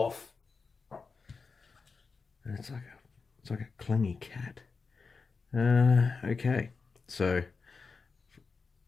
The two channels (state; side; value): quieter; right; 4.7 dB